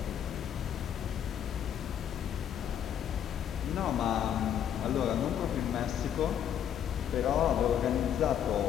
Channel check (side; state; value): right; quieter; 9.5 dB